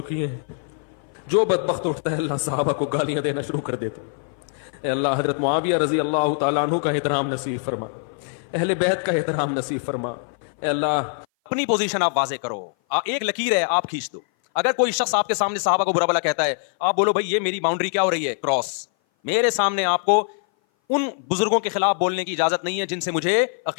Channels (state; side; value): silent; right; 58 dB below the other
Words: ہیں، جو بدبخت اٹھتا ہے اللہ صحابہ کو گالیاں دینا شروع کر دیتا ہے۔ اے اللہ حضرت معاویہ رضی اللہ تعالیٰ عنہ کا احترام نصیب فرما، اہل بیت کا احترام نصیب فرما۔ اے اللہ اپنی پوزیشن آپ واضح کرو، ایک لکیر ہے آپ کھینچ دو۔ اگر کوئی شخص آپ کے سامنے صحابہ کو برا بلا کہتا ہے، آپ بولو بھائی یہ میری باؤنڈری کیا ہو رہی ہے، کراس۔ میرے سامنے آپ کو ان بزرگوں کے خلاف بولنے کی اجازت نہیں ہے جن سے مجھے